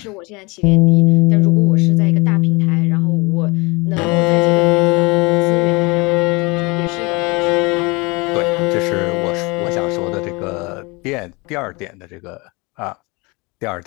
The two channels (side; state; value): right; quieter; 26.5 dB